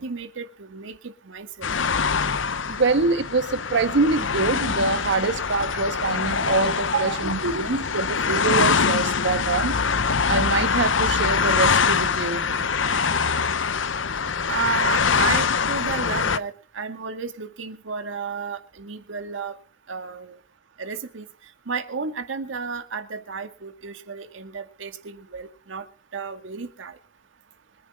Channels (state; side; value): normal; both; correlation -0.08